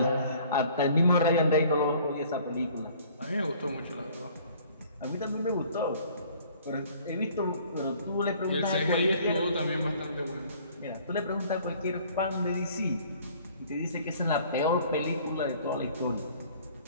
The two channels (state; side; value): inverted; both; correlation -0.54